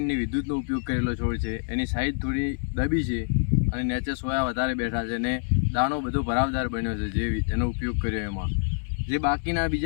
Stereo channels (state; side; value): silent; right; 61 dB below the other